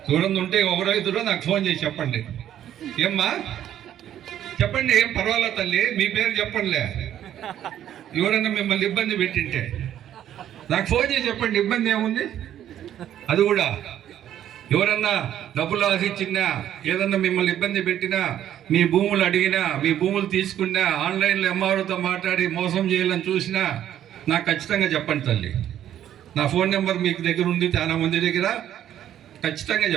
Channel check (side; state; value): left; quieter; 11.0 dB